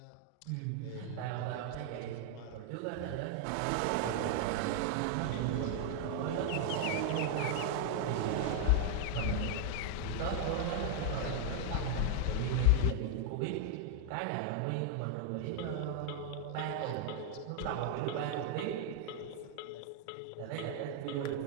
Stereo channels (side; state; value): both; different; correlation 0.00